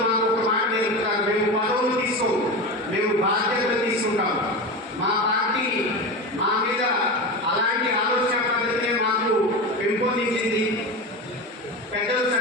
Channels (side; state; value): both; normal; correlation 0.24